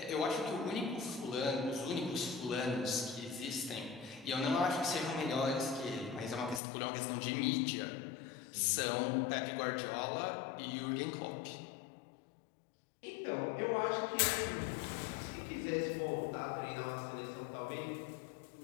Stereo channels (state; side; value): drops out; right; at 6.6 s